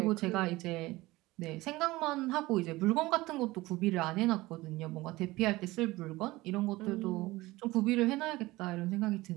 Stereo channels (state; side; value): quieter; left; 19.6 dB